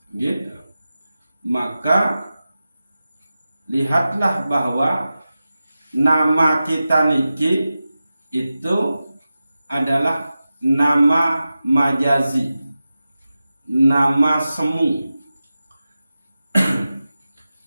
gitu, maka lihatlah bahwa nama kita niki itu adalah nama majazi, nama semu.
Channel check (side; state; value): both; inverted; correlation -0.94